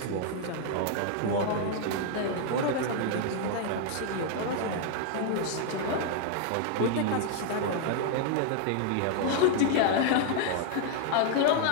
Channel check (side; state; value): both; different; correlation 0.00